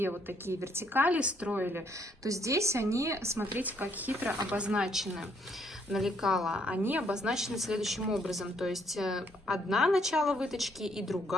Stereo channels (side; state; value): both; normal; correlation 0.69